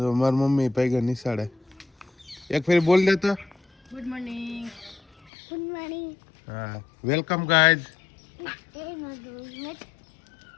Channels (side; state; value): right; drops out; at 5.3 s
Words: મારી મમ્મી પૈગા નિશાળે. એક ફેરી બોલ દે તો. Good morning. Good morning. હા, વેલકમ ગાઈઝ.